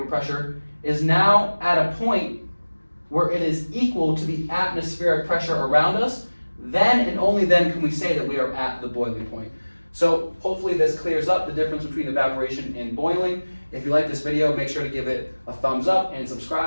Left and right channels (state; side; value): inverted; both; correlation -1.00